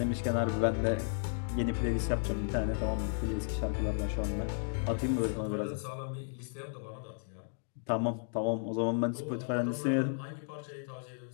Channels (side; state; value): right; silent; digital silence